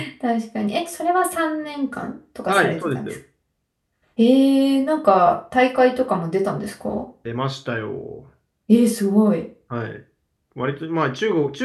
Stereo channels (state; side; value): identical; both; correlation 1.00